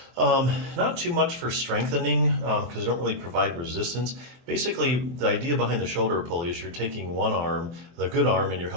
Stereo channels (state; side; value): late; left; 24 ms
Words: Not too much for strengthening because they don't really provide resistance. Basically, the idea behind the shoulder pulley is you're taking one arm, the good arm, and you're